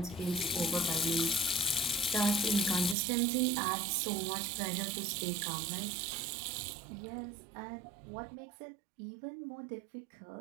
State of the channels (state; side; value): drops out; left; at 3.0 s